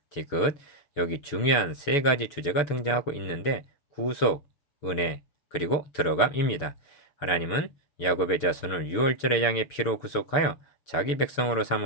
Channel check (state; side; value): late; right; 7.0 ms